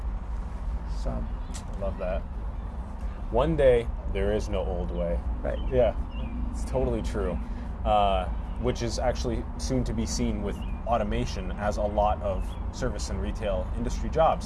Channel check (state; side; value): identical; both; correlation 1.00